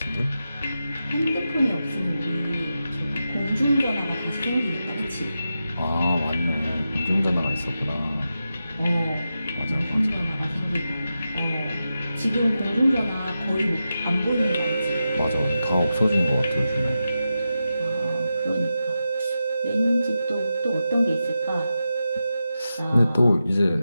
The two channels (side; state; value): both; inverted; correlation -0.90